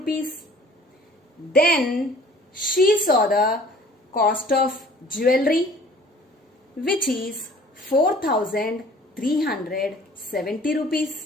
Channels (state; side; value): normal; both; correlation 0.51